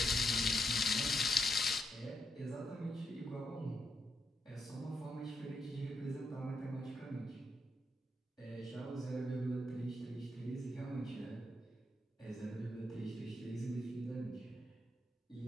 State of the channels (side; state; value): both; normal; correlation 0.80